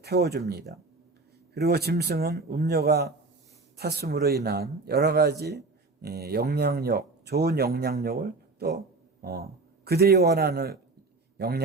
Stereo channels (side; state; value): left; quieter; 3.6 dB